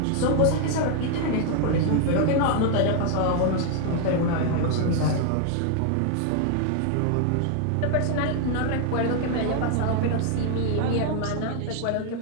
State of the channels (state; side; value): different; both; correlation 0.00